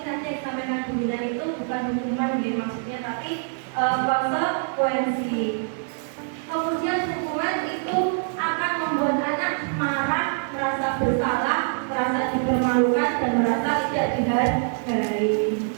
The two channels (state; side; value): silent; left; 59 dB below the other